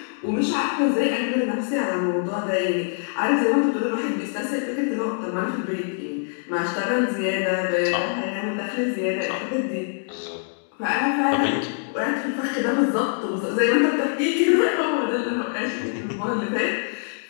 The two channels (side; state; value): right; silent; digital silence